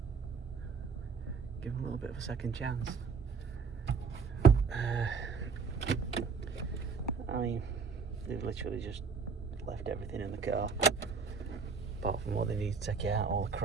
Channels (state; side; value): quieter; left; 5.5 dB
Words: Give them a little bit of a second chance. I mean, they've literally just left everything in the car, apart from what they need to take it out, all the